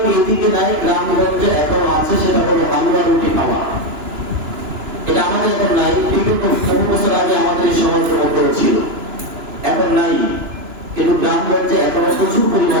এইদিকে নাই, গ্রামগঞ্জে এখনো আছে, সেটা হলো হালুয়া রুটি খাওয়া। এটা আমাদের এখন নাই, বিগত বহু বছর আগে আমাদের এই সমাজের মধ্যে ছিল, এখন নাই। কিন্তু গ্রামগঞ্জে এখনো প্রচুর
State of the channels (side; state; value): left; late; 2.9 ms